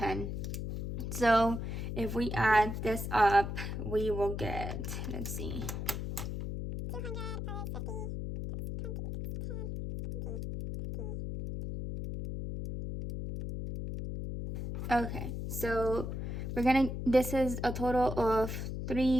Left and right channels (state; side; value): noise; left; hum, 4 dB below the sound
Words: So if we add this up, we will get, let's see, 200 plus 50, 10, 20. Okay, so this is a total of